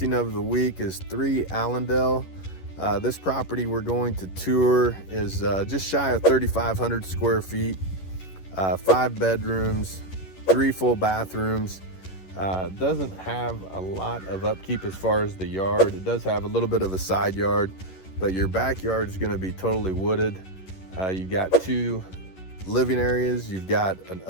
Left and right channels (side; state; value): right; late; 11 ms